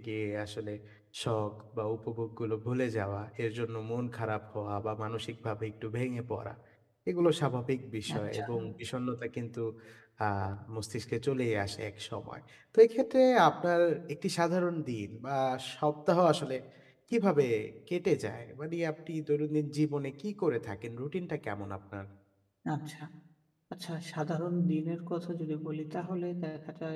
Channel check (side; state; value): both; identical; correlation 1.00